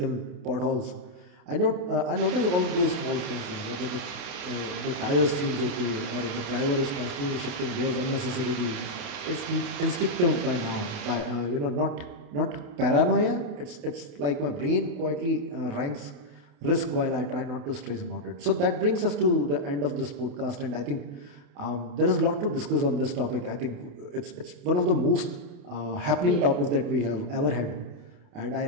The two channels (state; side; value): late; left; 28 ms